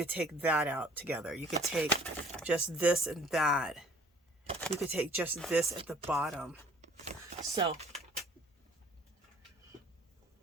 take that out together. You could take just this and that. You could take just this at the bottom. So,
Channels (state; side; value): normal; both; correlation 0.54